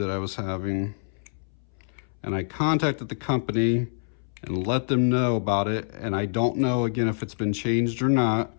I was having. And I contacted the company and let them know about it, and I don't know, again, if it's been changed or not.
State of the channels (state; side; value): silent; right; 61 dB below the other